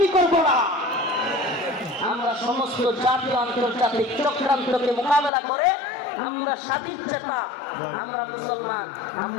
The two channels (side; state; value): right; drops out; at 5.3 s